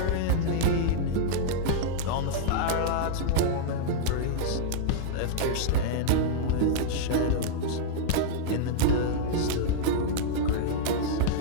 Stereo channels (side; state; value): both; different; correlation -0.02